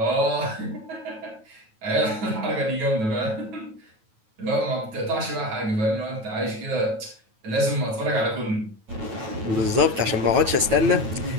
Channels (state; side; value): late; left; 9.2 ms